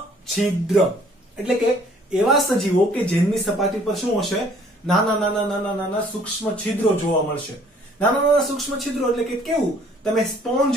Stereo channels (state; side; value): normal; both; correlation 0.58